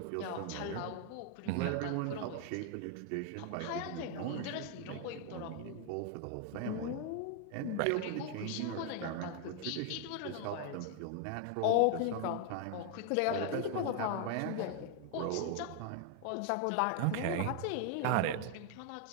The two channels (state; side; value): different; both; correlation 0.00